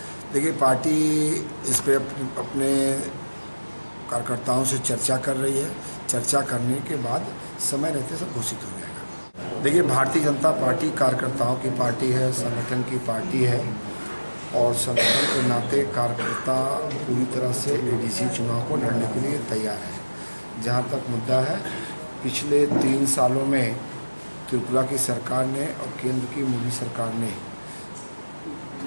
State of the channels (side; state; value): both; inverted; correlation -1.00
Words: देखिए, पार्टी इस पर अपने कार्यकर्ताओं से चर्चा कर रही है। चर्चा करने के बाद समय रहते सब घोषित हो जाएगा। देखिए, भारतीय जनता पार्टी कार्यकर्ताओं की पार्टी है, संगठन की पार्टी है और संगठन के नाते कार्यकर्ता पूरी तरह से ADC चुनाव को लड़ने के लिए तैयार है। जहाँ तक मुद्दा है, पिछले 3 सालों में त्रिपुरा की सरकार ने और केंद्र की मोदी सरकार ने